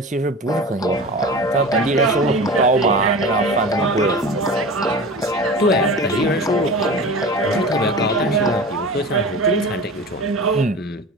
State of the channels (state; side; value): normal; both; correlation 0.34